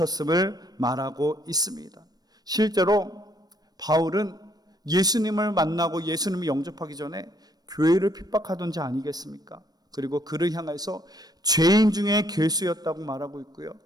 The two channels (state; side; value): late; left; 0.19 ms